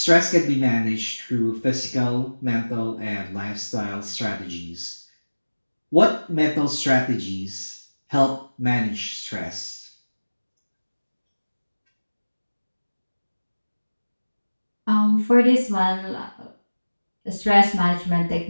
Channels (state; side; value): inverted; both; correlation -1.00